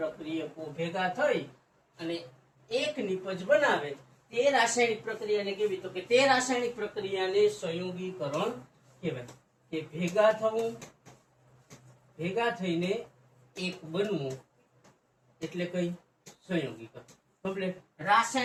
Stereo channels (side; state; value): both; identical; correlation 1.00